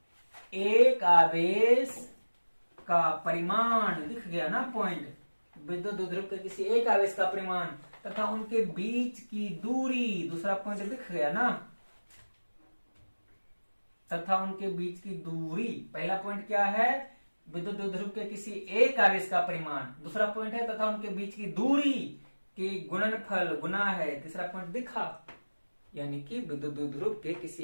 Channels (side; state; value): both; inverted; correlation -1.00